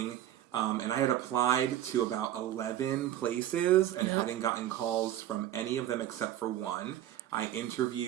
And I had applied to about 11 places and hadn't gotten calls from any of them except for one. I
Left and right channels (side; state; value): left; quieter; 12.2 dB